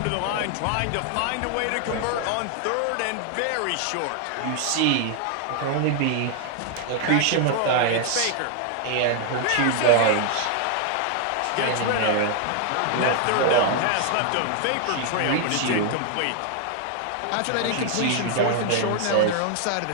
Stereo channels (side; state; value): both; different; correlation 0.00